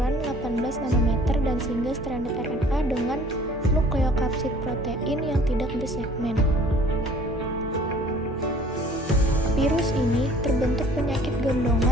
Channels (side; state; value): both; normal; correlation 0.52